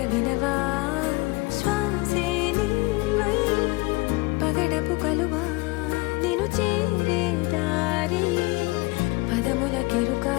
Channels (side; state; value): right; quieter; 24.0 dB